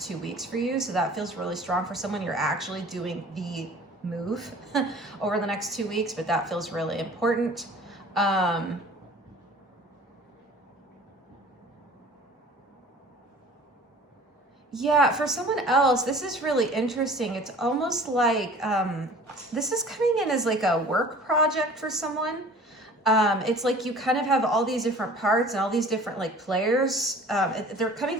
2 weeks for you. So that feels really strong for someone. You're actually doing the move over the next 2 weeks, but that feels really important. Yeah, for someone else, this is really interesting. It's almost like this is coming in as like a work project for someone. It's like you kind of have all these different parts and all these different like players. They're coming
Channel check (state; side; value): normal; both; correlation 0.46